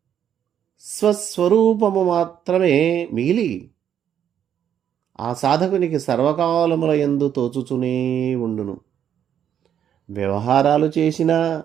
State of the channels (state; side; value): quieter; left; 9.4 dB